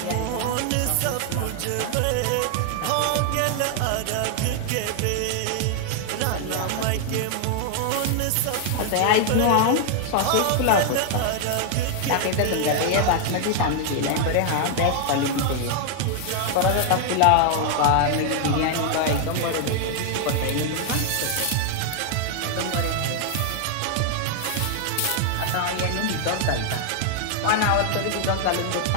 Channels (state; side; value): different; both; correlation 0.00